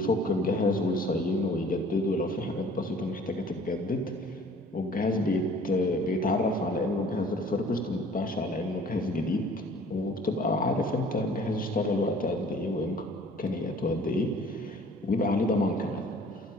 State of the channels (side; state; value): both; normal; correlation 0.52